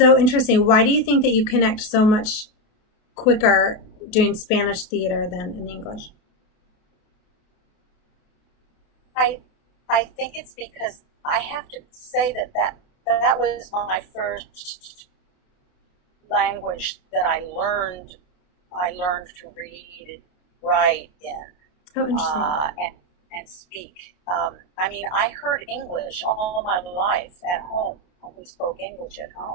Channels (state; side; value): late; right; 28 ms